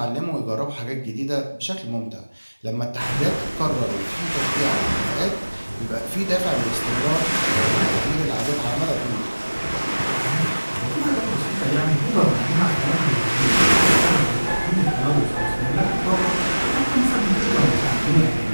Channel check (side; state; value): both; inverted; correlation -1.00